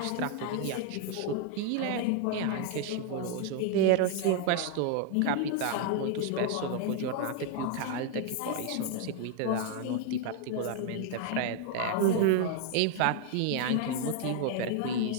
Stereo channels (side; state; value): both; different; correlation 0.00